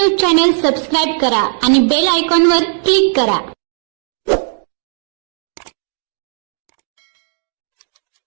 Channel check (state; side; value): silent; left; digital silence